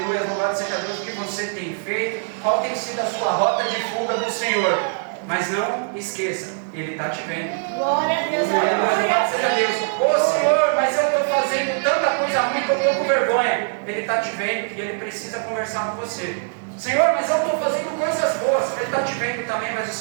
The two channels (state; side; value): silent; left; digital silence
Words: louvado seja Deus, o que você tem feito, qual tem sido a sua rota de fuga do Senhor. Mas não esqueça, Ele está te vendo. Glória a Deus. Aleluia, louvado seja Deus. Ô Senhor, mas eu estou fazendo tanta coisa ruim que eu estou com vergonha. Ele está te vendo e Ele precisa conversar com você. Senhor, mas eu estou fazendo coisas boas. Ele está te vendo também, mas o